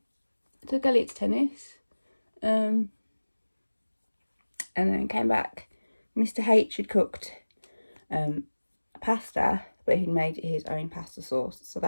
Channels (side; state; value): both; inverted; correlation -1.00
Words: I took Elliot to tennis. And then came back. Mr. H had cooked pasta, but he'd made his own pasta sauce, so